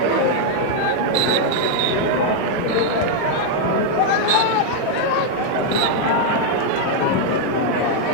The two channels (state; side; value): different; both; correlation 0.00